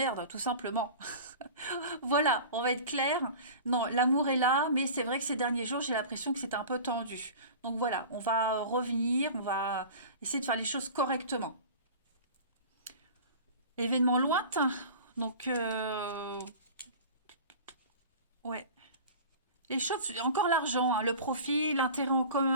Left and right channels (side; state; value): both; inverted; correlation -0.37